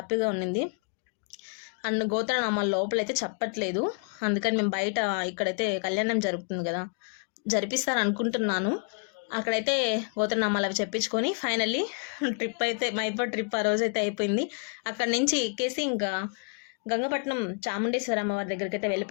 ఉన్నింది. అండ్ గోత్రనామాల లోపలైతే చెప్పట్లేదు, అందుకని మేము బయట ఇక్కడైతే కళ్యాణం జరుగుతుంది కదా, జరిపిస్తారు అనుకుంటున్నాను. అక్కడైతే గోత్రనామాలు అవి చెప్పించుకొని ఫైనల్లీ ట్రిప్ అయితే మైపాడ్ ట్రిప్ ఆ రోజు అయితే అయిపోయింది. అక్కడి నుంచి ఎక్కేసి ఇంకా గంగపట్నం చాముండేశ్వరి అమ్మవారి దగ్గరికి అయితే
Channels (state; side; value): quieter; right; 38.7 dB